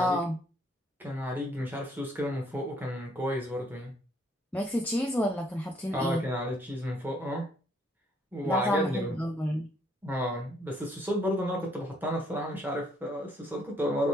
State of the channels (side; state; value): both; normal; correlation 0.67